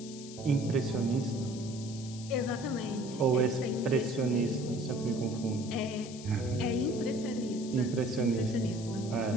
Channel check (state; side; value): noise; left; hiss, 15 dB below the sound